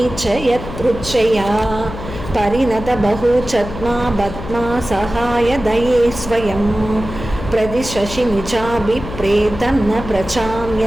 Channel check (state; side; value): noise; left; hum, 10 dB below the sound